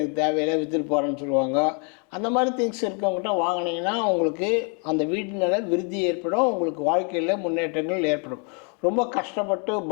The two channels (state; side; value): quieter; right; 38.0 dB